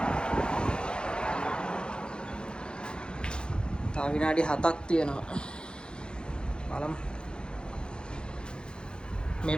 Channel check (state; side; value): late; right; 0.049 ms